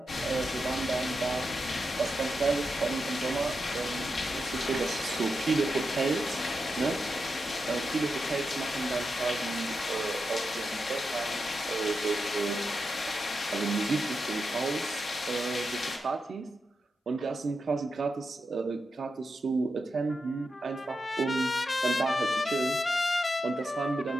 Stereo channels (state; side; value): normal; both; correlation 0.87